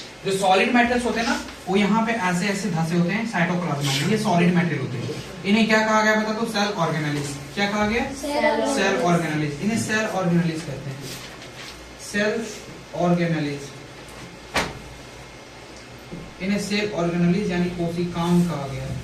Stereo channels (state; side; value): identical; both; correlation 1.00